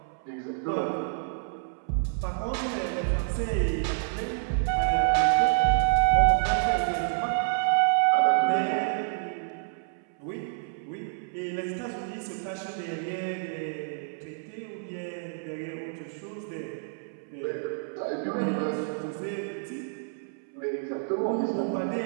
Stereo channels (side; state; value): left; silent; 59 dB below the other